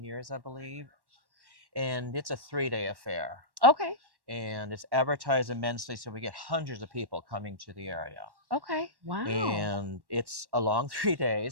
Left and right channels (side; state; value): left; late; 1.1 ms